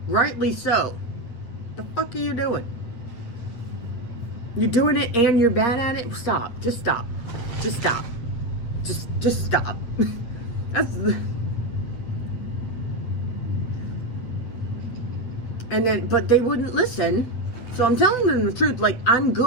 Rightly so. The fuck are you doing? You're doing it and you're bad at it? Stop. Just stop. Just stop. Just stop. But they wouldn't listen. So I'm telling them the truth. Like, I'm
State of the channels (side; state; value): right; late; 8.6 ms